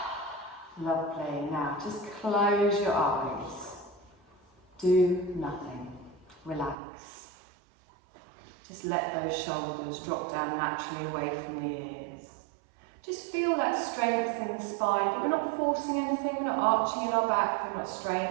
Lovely. Now just close your eyes. Do nothing. Relax. Just let those shoulders drop down naturally away from the ears. Just feel that strength in the spine, but we're not forcing anything, we're not arching in our back, we're not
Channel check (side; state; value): left; drops out; at 6.8 s